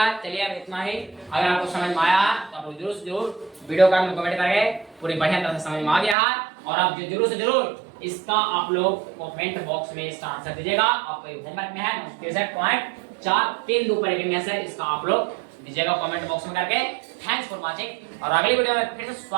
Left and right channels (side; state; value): left; drops out; at 6.2 s